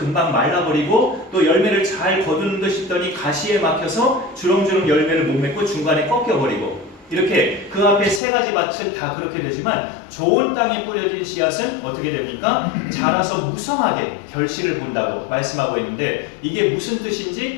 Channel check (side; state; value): right; drops out; at 8.2 s